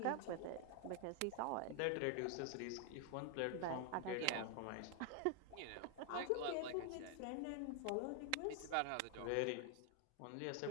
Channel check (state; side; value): different; both; correlation 0.00